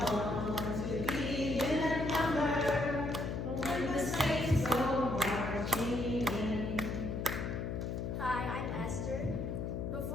want to be in that number, when the saints go marching in. Hi, I'm Esther.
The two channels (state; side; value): noise; left; hum, 3 dB below the sound